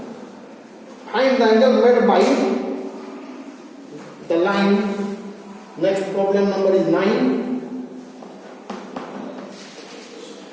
Find the angle made by the line. Next problem number is 9.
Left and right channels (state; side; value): identical; both; correlation 1.00